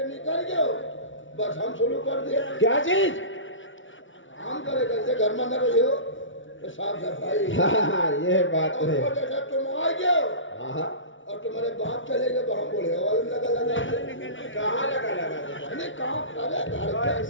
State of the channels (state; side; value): late; right; 0.56 ms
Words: निकल गए हो, बस हम शुरू कर दिए। क्या चीज? काम करे, जैसे घर में न रही हो तो साफ सफाई। हाँ ये बात है। और जैसे तुम आ गए हो और तुम्हारे बाप चले गए तो हम बोले वाले लगा कहाँ लगा नहीं काम करे घर पे।